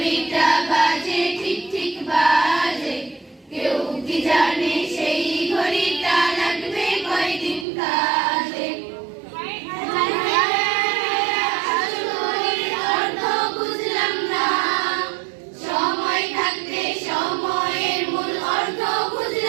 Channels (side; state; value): left; drops out; at 7.7 s